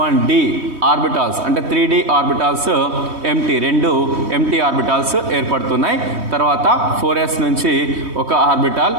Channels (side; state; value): left; late; 3.2 ms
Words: ఆర్బిటాల్స్ అంటే 3d ఆర్బిటాల్స్ రెండు ఎంటీ ఆర్బిటాల్స్ ఏర్పడుతున్నాయి. తర్వాత 4s నుంచి ఒక ఆర్బిటాల్,